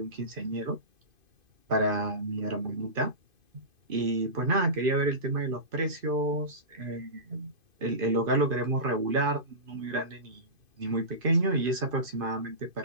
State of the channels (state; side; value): late; left; 2.5 ms